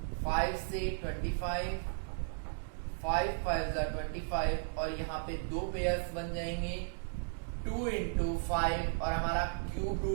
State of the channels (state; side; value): silent; left; digital silence